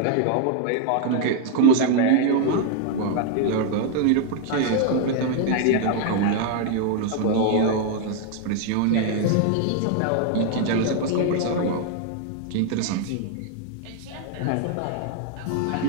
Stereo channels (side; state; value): both; different; correlation 0.00